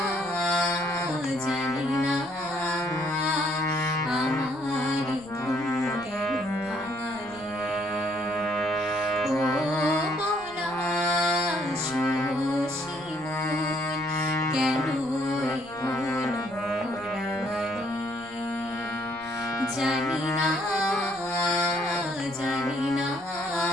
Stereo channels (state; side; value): noise; left; rumble, 24 dB below the sound